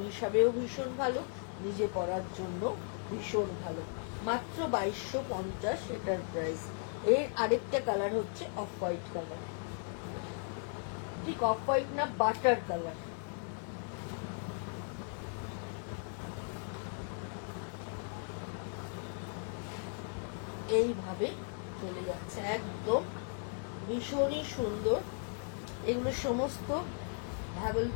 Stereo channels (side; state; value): right; silent; 53 dB below the other